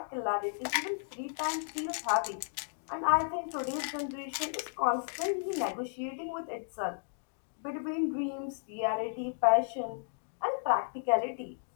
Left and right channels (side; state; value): right; silent; digital silence